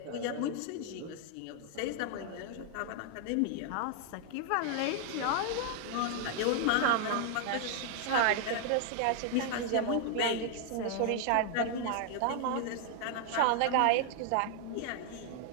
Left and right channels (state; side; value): different; both; correlation 0.00